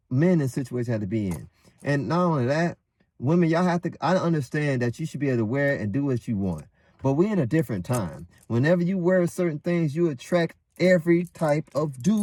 men in situations they have to be in. And not only that, women, y'all have to, I understand that you should be able to wear it and do what you want. But we're in a different time. Whenever you wear certain things, you attract every type of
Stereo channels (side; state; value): both; identical; correlation 1.00